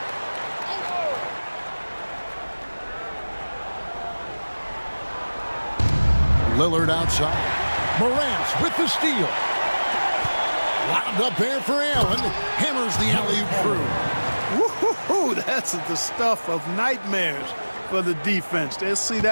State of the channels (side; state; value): both; inverted; correlation -1.00